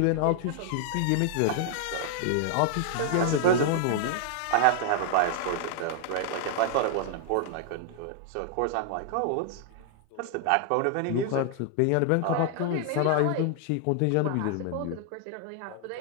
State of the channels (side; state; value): both; different; correlation 0.00